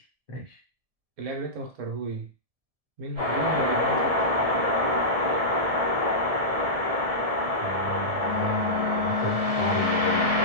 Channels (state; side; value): late; left; 1.7 ms